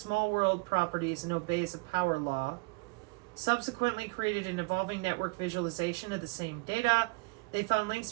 world properties and obeys a power law. Subsequently created an evolving network visualization of the same data. They found links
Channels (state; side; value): quieter; left; 27.5 dB